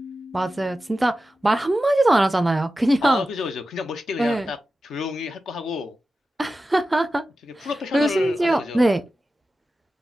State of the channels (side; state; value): both; normal; correlation 0.93